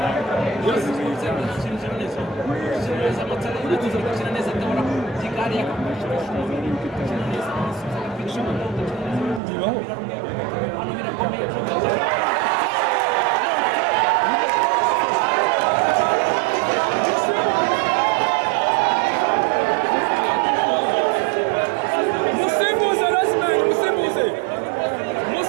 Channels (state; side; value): drops out; left; at 9.4 s